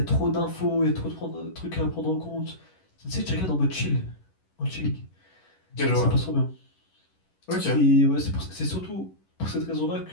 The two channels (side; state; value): right; late; 11 ms